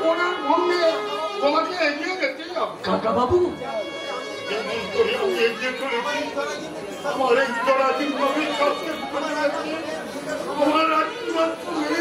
বনার ভঙ্গে তোমাকে এগিয়ে যেতে হবে। কাকা বাবু, যেমন করে আমি এগিয়ে চলেছি, আমার এই জরাজীর্ণ বিশ্বাসকে তোমার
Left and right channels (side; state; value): both; identical; correlation 1.00